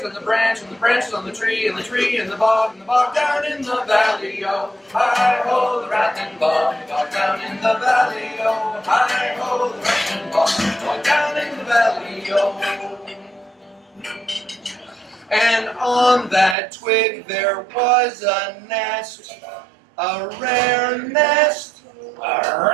and the branches on the tree, and the tree, and the bog down in the valley, oh, hi-ho, the rattling bog down in the valley, oh, hi-ho, the rattling bog down in the valley, oh. And on that twig there was a nest, a rare nest, a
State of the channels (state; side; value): drops out; left; at 16.6 s